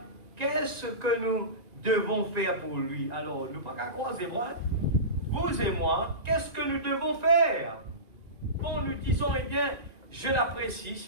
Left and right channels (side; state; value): left; late; 1.9 ms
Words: qu'est-ce que nous devons faire pour lui? Alors, nous pas qu'à croiser moi, vous et moi, qu'est-ce que nous devons faire? Quand nous disons, eh bien, je l'apprécie,